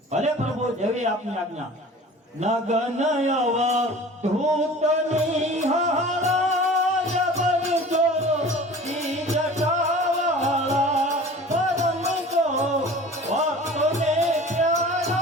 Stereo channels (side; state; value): both; normal; correlation 0.42